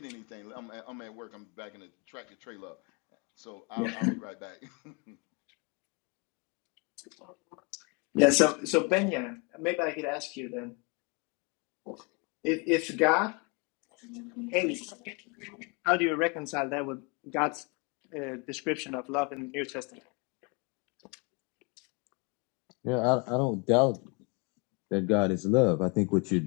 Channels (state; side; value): quieter; right; 31.5 dB